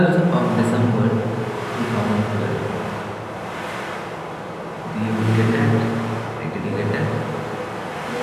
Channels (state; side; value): identical; both; correlation 1.00